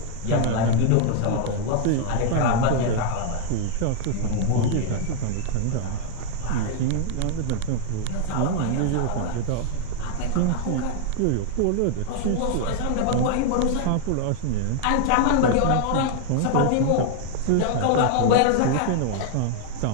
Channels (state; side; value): different; both; correlation 0.00